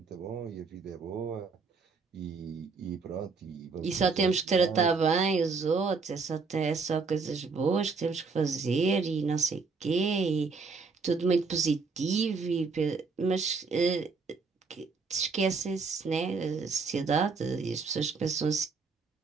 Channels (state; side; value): quieter; left; 4.7 dB